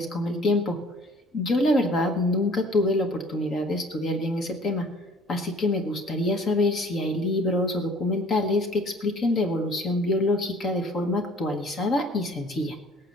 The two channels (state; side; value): normal; both; correlation 0.52